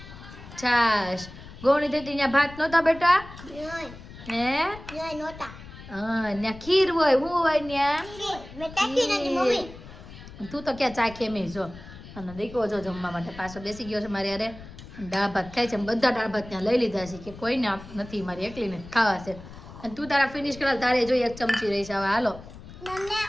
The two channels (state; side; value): noise; left; rumble, 16 dB below the sound